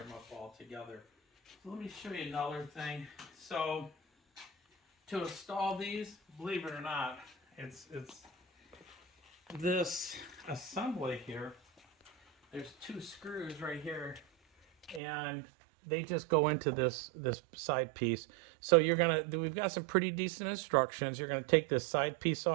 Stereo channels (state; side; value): drops out; left; at 15.0 s